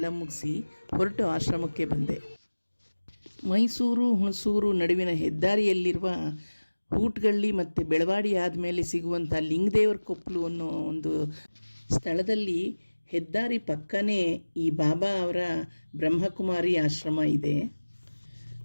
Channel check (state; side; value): inverted; both; correlation -1.00